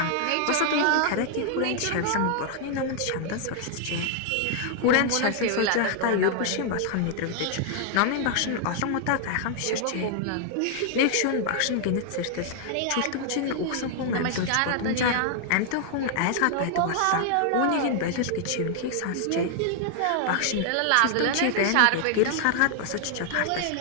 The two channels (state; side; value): different; both; correlation 0.00